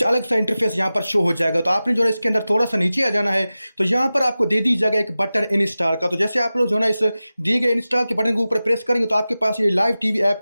अलग सा इंटरफेस यहाँ पर शो हो जाएगा। तो आपने जो है इसके अंदर थोड़ा सा नीचे आ जाना है, तो यहाँ पर आपको दे दी जाएगा एक बटन इंस्टॉल का। तो जैसे आप लोग जो है ना इस दिए गए इंस्टॉल के बटन के ऊपर प्रेस करेंगे तो आपके पास ये लाइव टीवी ऐप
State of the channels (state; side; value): inverted; both; correlation -0.95